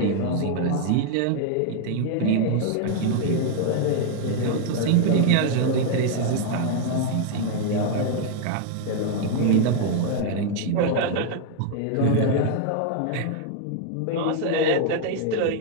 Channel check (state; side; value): different; both; correlation 0.00